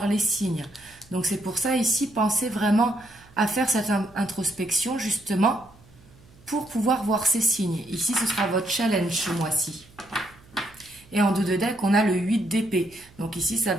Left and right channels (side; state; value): right; noise; hum, 26 dB below the sound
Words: les signes. Donc c'est pour ça ici, pensez vraiment à faire cette introspection justement pour pouvoir voir ces signes. Ici, ce sera votre challenge ce mois-ci. Et en dos de deck, on a le 8 d'épée. Donc ici, ça